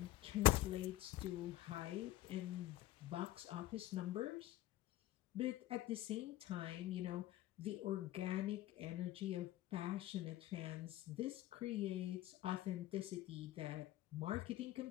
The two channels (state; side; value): quieter; right; 15.5 dB